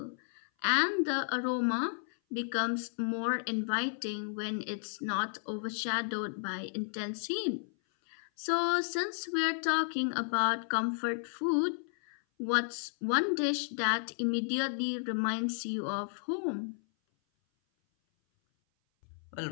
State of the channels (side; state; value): right; silent; 56 dB below the other